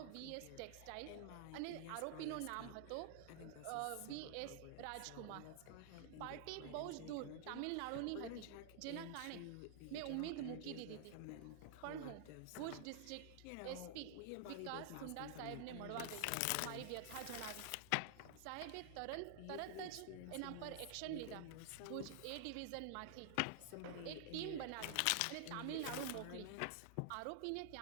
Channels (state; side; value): different; both; correlation -0.01